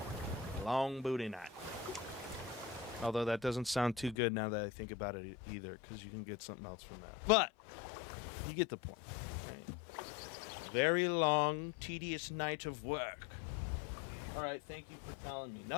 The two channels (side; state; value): right; drops out; at 4.2 s